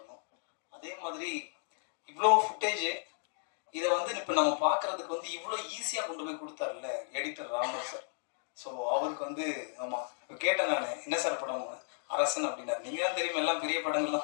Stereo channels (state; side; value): silent; right; digital silence